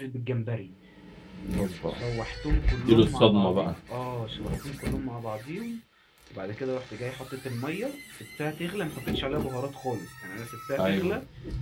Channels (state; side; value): identical; both; correlation 1.00